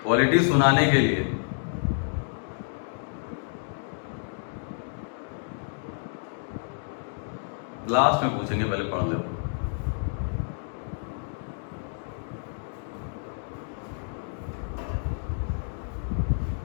पॉलिटी सुनाने के लिए। लास्ट में पूछेंगे, पहले पढ़ लो।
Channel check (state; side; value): silent; right; digital silence